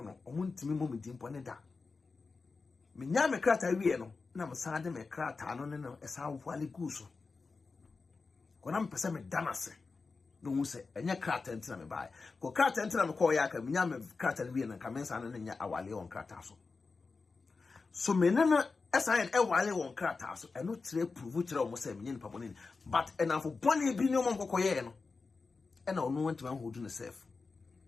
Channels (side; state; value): right; quieter; 4.3 dB